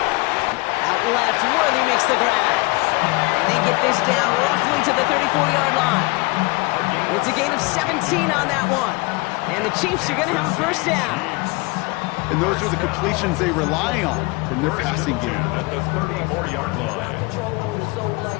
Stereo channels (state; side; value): quieter; right; 25.5 dB